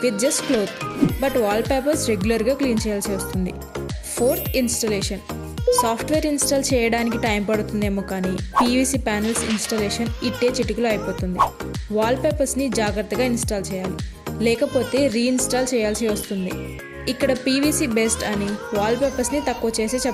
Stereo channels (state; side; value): identical; both; correlation 1.00